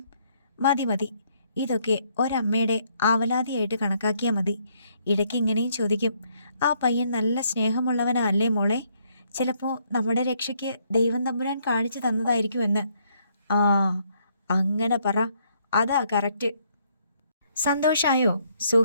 മതി മതി, ഇതൊക്കെ ഒരമ്മയുടെ ആവലാതിയായിട്ട് കണക്കാക്കിയാൽ മതി. ഇടയ്ക്ക് ഇങ്ങനെയും ചോദിക്കും, ആ പയ്യൻ നല്ല സ്നേഹമുള്ളവനാ അല്ലേ മോളെ? ചിലപ്പോൾ നമ്മുടെ രക്ഷയ്ക്ക് ദൈവം തമ്പുരാൻ കാണിച്ചു തന്നതായിരിക്കുമെന്ന്. ആ, അങ്ങനെ പറ, അതാ കറക്റ്റ്. സന്തോഷായോ?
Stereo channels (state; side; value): inverted; both; correlation -0.69